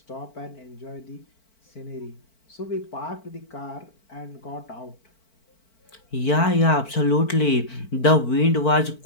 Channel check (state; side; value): late; right; 4.5 ms